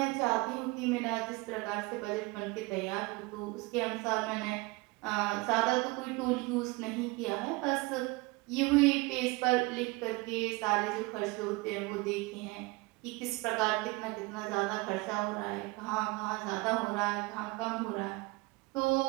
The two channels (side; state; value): left; quieter; 24.4 dB